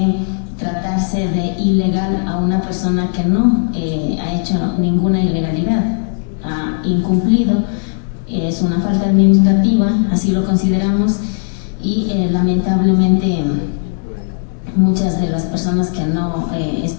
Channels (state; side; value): silent; right; 69 dB below the other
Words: tratarse de ilegal a una persona que no ha hecho ninguna ilegalidad, ha incumplido, es una falta administrativa, así lo consideramos, y lamentablemente muchas de las personas que no